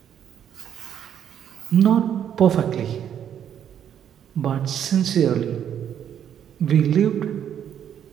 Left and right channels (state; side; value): quieter; left; 9.4 dB